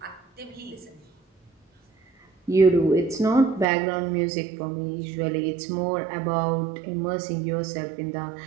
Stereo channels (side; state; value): left; drops out; at 3.7 s